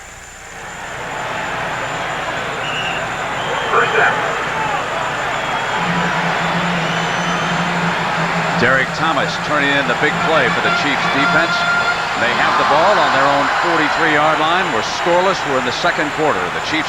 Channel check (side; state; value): both; identical; correlation 1.00